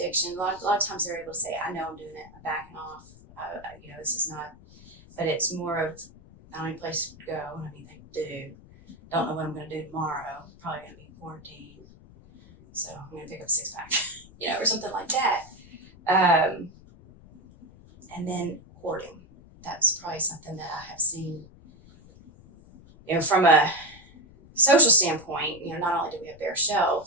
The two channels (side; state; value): left; noise; rumble, 23 dB below the sound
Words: A lot of times they're able to say, I know I'm doing it, I'm backing off. This is not, but it's more of, I don't have any place to go, I don't have anything to do. Don't know what I'm going to do tomorrow. Probably going to be in quarantine. So I'm going to pick up a 6-pack, or something like that. And then hoarding. That's probably something that I have seen, from a social standpoint, not only do we have bare